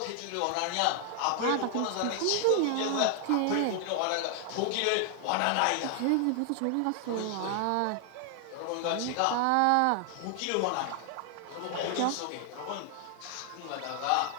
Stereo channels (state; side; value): different; both; correlation 0.00